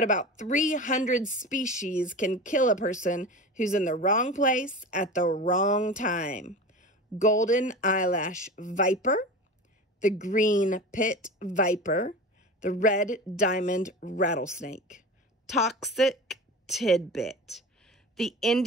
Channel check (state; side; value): normal; both; correlation 0.31